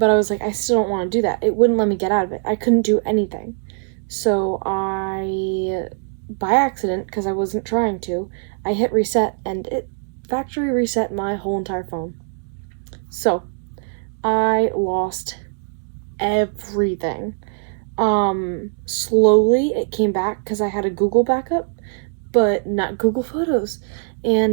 I was like, I still don't want to do that. It wouldn't let me get out of it. I couldn't do anything. So I, by accident, because I wasn't trying to, I hit reset, and it factory reset my whole entire phone. So I lost everything. Slowly it came back because I had a Google backup, but not Google Photos.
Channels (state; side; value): silent; left; digital silence